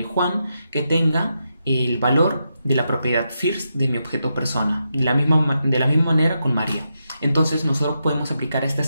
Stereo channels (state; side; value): inverted; both; correlation -0.85